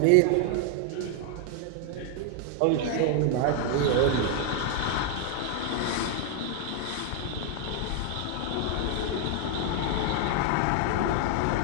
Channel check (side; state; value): both; different; correlation 0.00